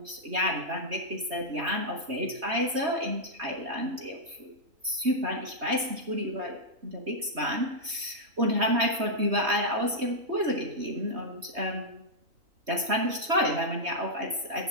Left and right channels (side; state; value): left; late; 3.2 ms